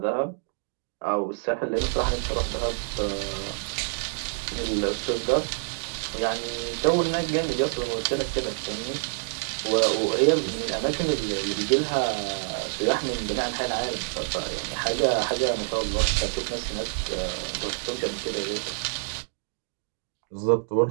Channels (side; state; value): left; silent; digital silence